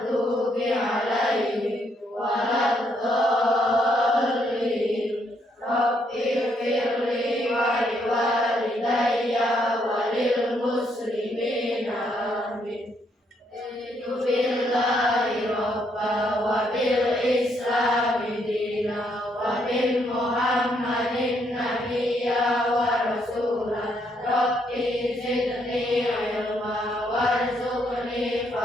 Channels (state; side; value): normal; both; correlation 0.73